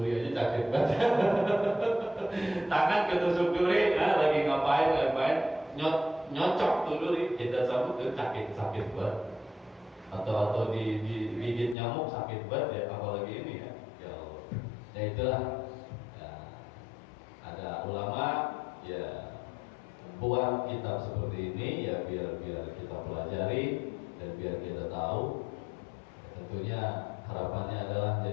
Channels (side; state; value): right; drops out; at 11.8 s